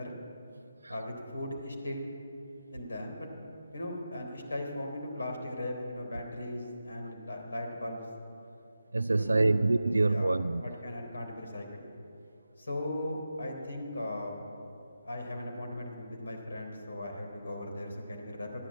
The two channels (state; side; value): inverted; both; correlation -0.92